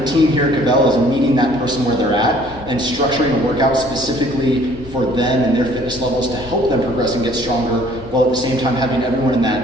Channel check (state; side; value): normal; both; correlation 0.57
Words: team here at Kvell is meeting that person where they're at and structuring a workout specifically for them and their fitness levels to help them progress and get stronger, while at the same time having everyone in